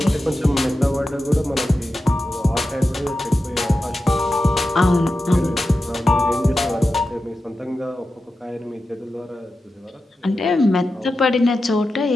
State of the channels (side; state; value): both; normal; correlation 0.91